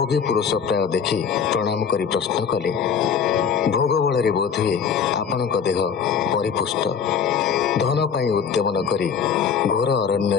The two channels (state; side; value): quieter; right; 6.9 dB